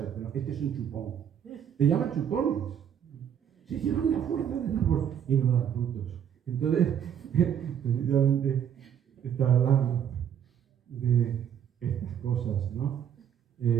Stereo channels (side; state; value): left; quieter; 9.0 dB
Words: Pero este es un chupón. Le llaman chupones. Se llevan la fuerza del árbol y no dan frutos. Entonces, precisamente está hablando de estas cosas, ¿no?